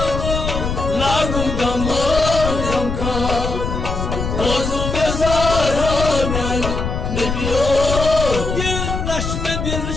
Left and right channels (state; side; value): noise; left; rumble, 3 dB below the sound